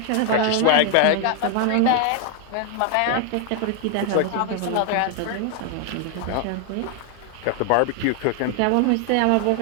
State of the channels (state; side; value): different; both; correlation 0.00